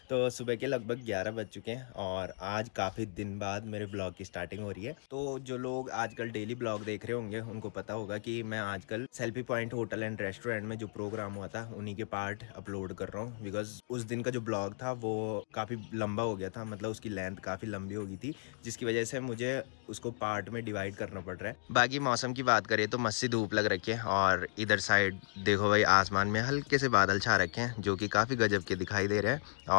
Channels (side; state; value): right; silent; digital silence